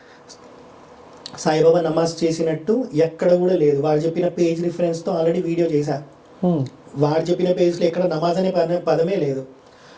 సాయిబాబా నమాజ్ చేసినట్టు ఎక్కడ కూడా లేదు. వాడు చెప్పిన పేజ్ రిఫరెన్స్తో ఆల్రెడీ వీడియో చేశా. వాడు చెప్పిన పేజ్లో ఎక్కడ నమాజ్ అనే పదమే లేదు.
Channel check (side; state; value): both; identical; correlation 1.00